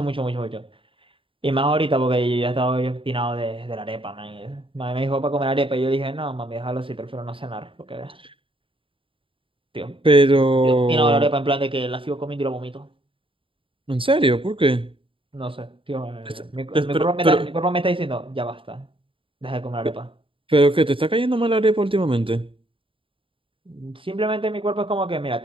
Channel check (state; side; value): late; left; 0.25 ms